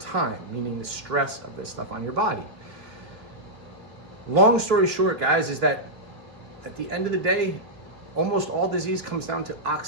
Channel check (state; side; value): late; left; 3.0 ms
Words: meaning the stress of this stuff on your body. Long story short, guys, is that at the end of the day, almost all disease comes down to